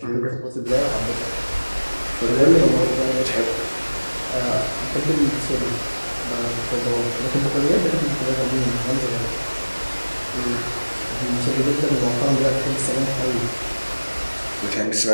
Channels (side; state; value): both; inverted; correlation -1.00